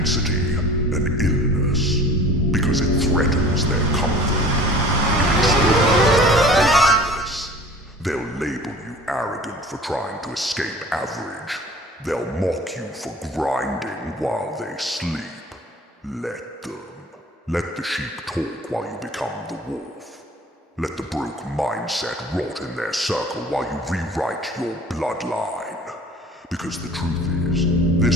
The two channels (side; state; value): both; normal; correlation 0.44